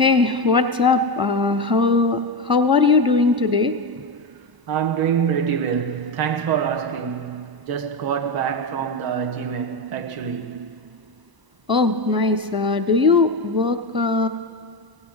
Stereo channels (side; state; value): left; late; 1.0 ms